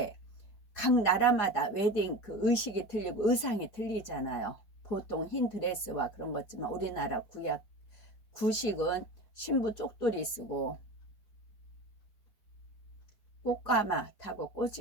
각 나라마다 웨딩 그 의식이 틀리고 의상이 틀리잖아요. 보통 흰 드레스와 그런 거지만 우리나라 구식은 신부 쪽돌이 쓰고 꽃가마 타고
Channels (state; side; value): late; right; 5.0 ms